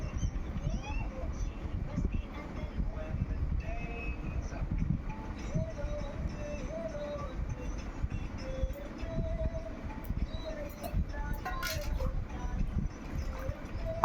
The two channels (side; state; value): both; identical; correlation 1.00